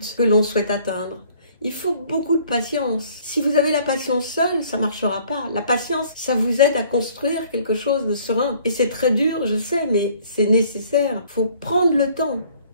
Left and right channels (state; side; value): inverted; both; correlation -0.57